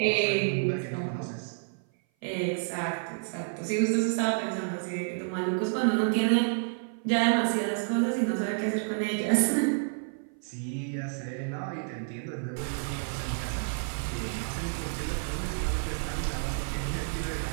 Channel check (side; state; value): left; silent; 56 dB below the other